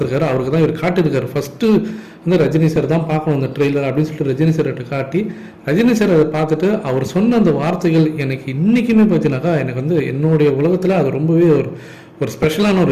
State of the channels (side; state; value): both; identical; correlation 1.00